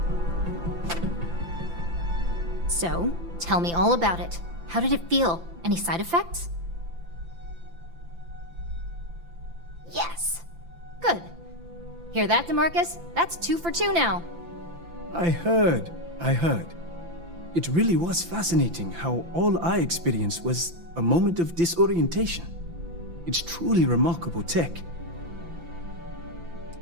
So, tell me all about it. How did it feel? Any side effects? Yes! Good. Hear that, DeMarcus? That's 2 for 2 now. I heard. It really was fascinating how all I experienced was a moment of disorientation. It's truly remarkable tech.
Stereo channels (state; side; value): late; left; 5.9 ms